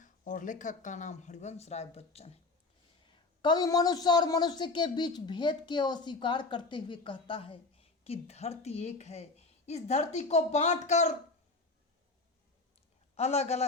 और लेखक का नाम हरिवंश राय बच्चन है। कवि मनुष्य और मनुष्य के बीच भेद के अस्वीकार करते हुए कहता है कि धरती एक है। इस धरती को बांटकर अलग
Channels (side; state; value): right; quieter; 3.5 dB